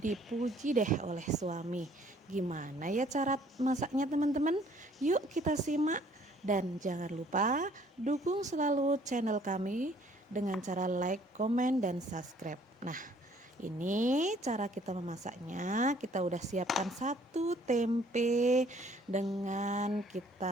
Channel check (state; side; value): normal; both; correlation 0.59